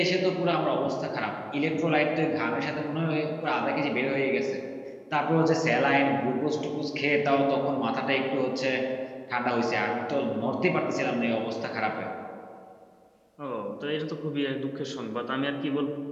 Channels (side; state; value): both; identical; correlation 1.00